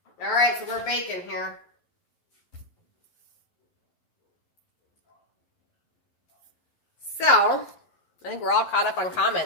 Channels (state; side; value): late; right; 11 ms